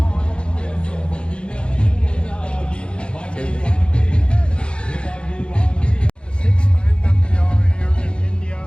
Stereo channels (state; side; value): late; right; 0.055 ms